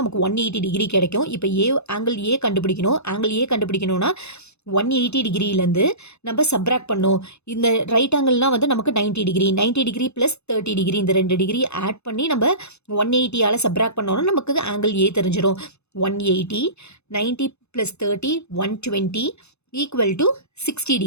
நமக்கு 180 டிகிரி கிடைக்கும். இப்போ ஆங்கிள் ஏ கண்டுபிடிக்கணும். ஆங்கிள் ஏ கண்டுபிடிக்கணும்னா 180 டிகிரிலேருந்து நம்ம சப்ராக்ட் பண்ணோம். இந்த ரைட் ஆங்கிள்னால் வந்து நமக்கு 90 டிகிரி, 90 டிகிரி ப்ளஸ் 30 டிகிரி, இந்த 2 டிகிரி ஆட் பண்ணி நம்ம 180ஆல் சப்ராக்ட் பண்ணோன்னா நமக்கு ஆங்கிள் ஏ தெரிஞ்சிடும். 180 90 plus 30 120 equal to 60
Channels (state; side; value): late; right; 0.80 ms